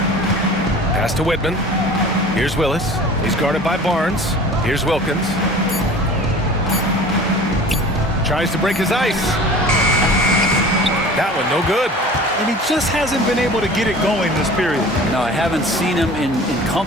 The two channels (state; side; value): normal; both; correlation 0.42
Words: Pass to Whitman. Here's Willis. He's guarded by Barnes. Here's Wilkins. Tries to break his ice. That one no good. and he just hasn't been able to get it going this period. No, I haven't seen him in